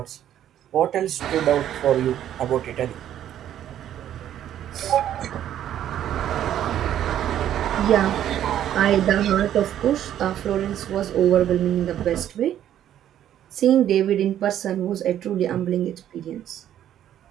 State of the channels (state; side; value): quieter; left; 11.0 dB